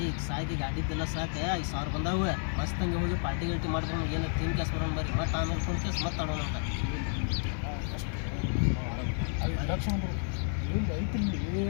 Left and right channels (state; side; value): silent; right; 57 dB below the other